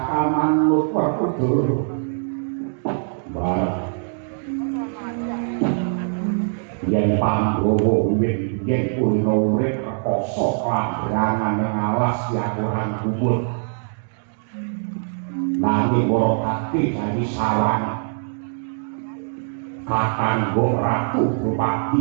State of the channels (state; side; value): silent; left; digital silence